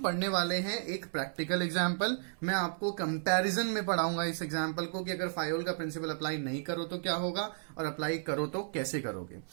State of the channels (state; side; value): silent; left; 56 dB below the other